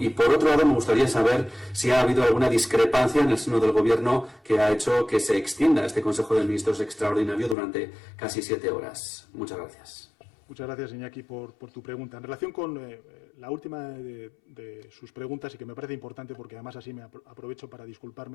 Y por otro lado, me gustaría saber si ha habido alguna discrepancia en el seno del Gobierno que ha hecho que se extienda este Consejo de Ministros extraordinario durante casi 7 horas. Muchas gracias. Muchas gracias, Iñaki, por tu pregunta. En relación con la última de sus preguntas, y que me parece importante porque además así me aprovecho para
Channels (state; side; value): drops out; right; at 7.6 s